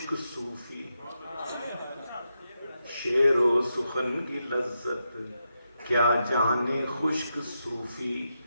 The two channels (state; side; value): inverted; both; correlation -0.86